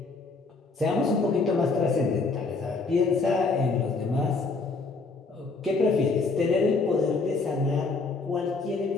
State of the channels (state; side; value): quieter; right; 3.9 dB